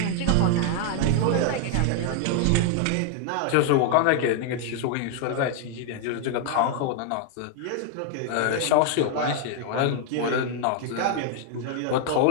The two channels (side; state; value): both; different; correlation 0.00